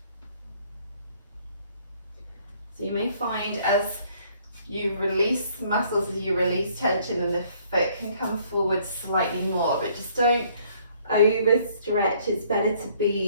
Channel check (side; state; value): both; inverted; correlation -0.62